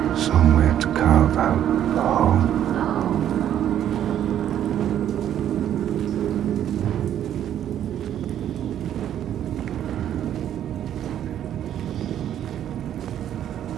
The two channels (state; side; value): quieter; left; 10.7 dB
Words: somewhere to carve out a home.